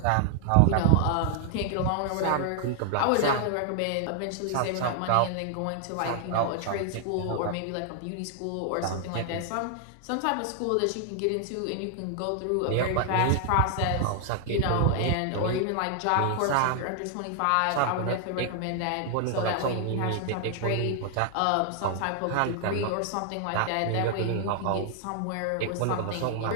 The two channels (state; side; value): different; both; correlation 0.00